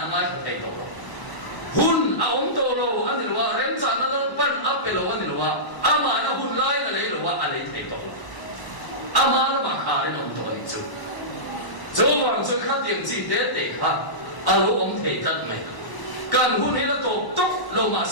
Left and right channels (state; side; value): late; right; 1.0 ms